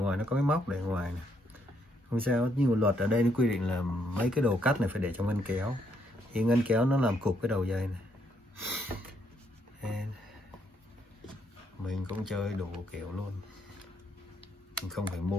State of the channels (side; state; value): both; normal; correlation 0.73